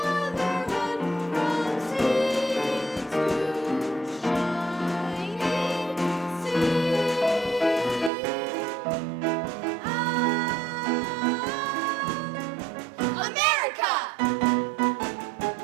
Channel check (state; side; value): drops out; left; at 8.1 s